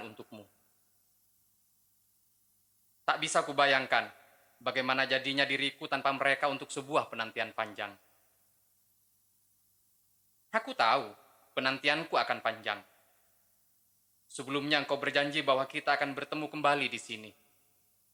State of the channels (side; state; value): both; identical; correlation 1.00